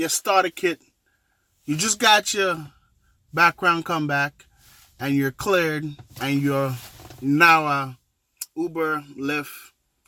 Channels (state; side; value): identical; both; correlation 1.00